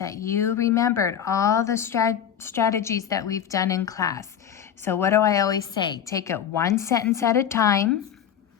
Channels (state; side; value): quieter; right; 9.0 dB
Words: you remembered all the strategies that we've done in class. So what do I always say? Take it one sentence at a time.